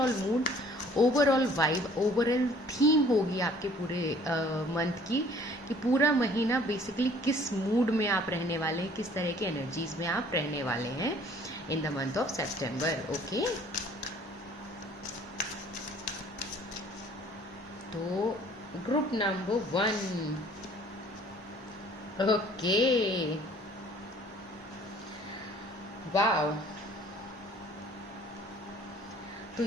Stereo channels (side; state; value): both; normal; correlation 0.55